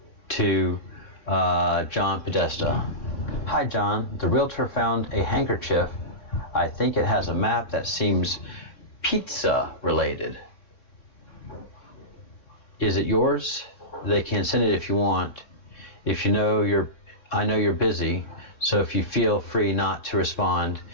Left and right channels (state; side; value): late; right; 3.8 ms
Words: to John Podesta. Hi John, the realtor found a handkerchief. I think it has a map that seems pizza related. Is it yours? They can send it if you want. If you know I know you're busy, so if you feel free not to respond